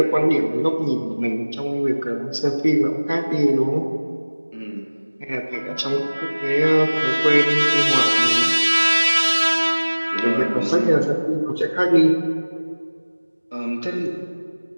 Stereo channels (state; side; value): inverted; both; correlation -1.00